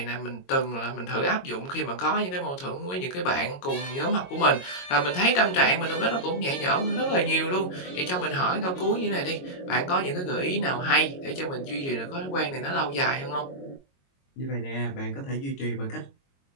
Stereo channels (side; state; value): right; late; 22 ms